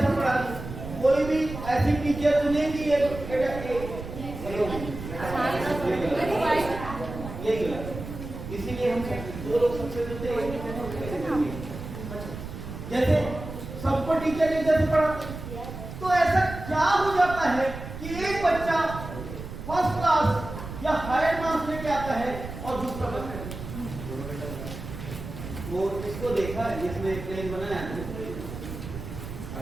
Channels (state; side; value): noise; right; rumble, 10 dB below the sound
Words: पढ़ाते हैं। कोई भी ऐसी टीचर तो नहीं कि ये गलत। इसीलिए हम 2 लोग सबसे मिलते हैं। जैसे सबको टीचर एक जैसे पढ़ाते हैं, तो ऐसा क्या हो जाता है कि एक बच्चा फर्स्ट क्लास या हायर मार्क्स लेके आता है और दूसरा बच्चा वो इसको देखा है, इसमें प्लेन बनाया है।